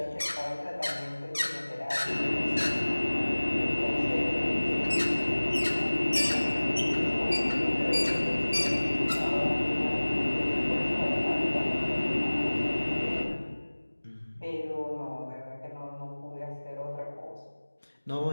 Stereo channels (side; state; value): both; inverted; correlation -1.00